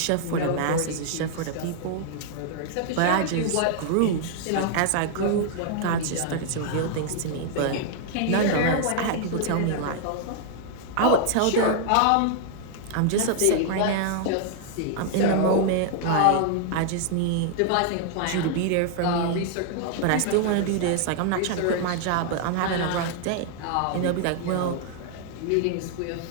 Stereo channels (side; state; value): both; different; correlation 0.00